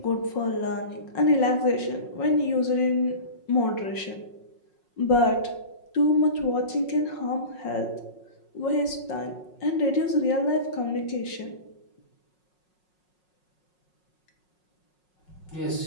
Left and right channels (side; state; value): right; late; 5.5 ms